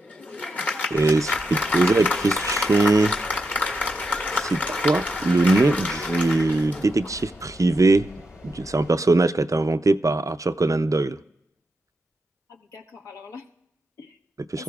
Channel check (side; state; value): both; normal; correlation 0.85